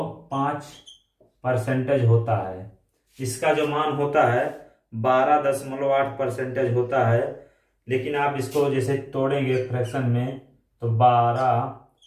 होता है। इसका जो मान होता है 12.8% होता है। लेकिन आप इसको जैसे तोड़ेंगे फ्रैक्शन में तो 12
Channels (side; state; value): both; identical; correlation 1.00